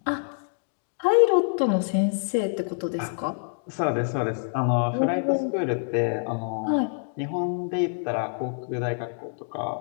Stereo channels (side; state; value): right; silent; digital silence